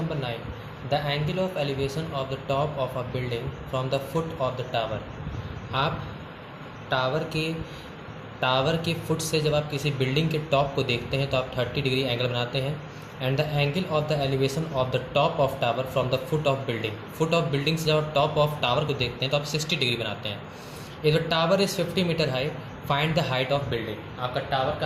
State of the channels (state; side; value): identical; both; correlation 1.00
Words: 9, the angle of elevation of the top of a building from the foot of the tower. आप tower के foot से जब आप किसी building के टॉप को देखते हैं तो आप 30 डिग्री एंगल बनाते हैं। And the angle of the elevation of the top of tower from the foot of building से जब आप टॉप ऑफ टावर को देखते हैं तो आप 60 डिग्री बनाते हैं। If the tower is 50 metre high, find the height of building. आपका टावर